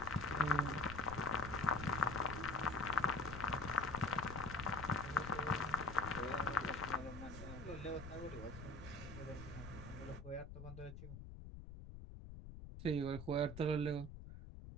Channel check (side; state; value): left; noise; rumble, 11 dB below the sound